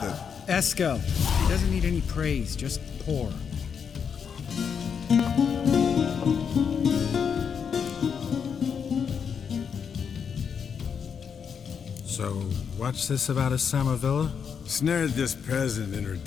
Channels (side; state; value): right; quieter; 6.9 dB